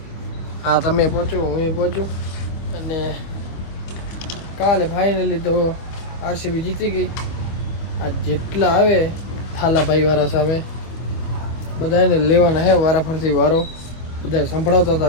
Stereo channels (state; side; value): late; right; 25 ms